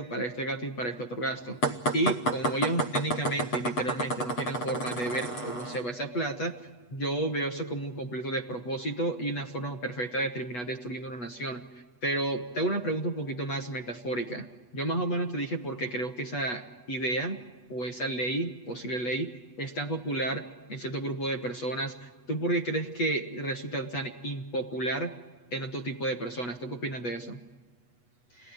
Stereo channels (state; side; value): late; right; 8.2 ms